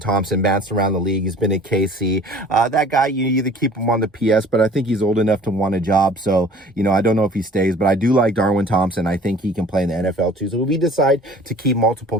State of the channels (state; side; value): normal; both; correlation 0.48